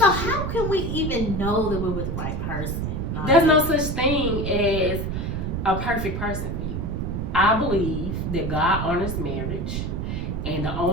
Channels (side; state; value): right; noise; rumble, 2 dB below the sound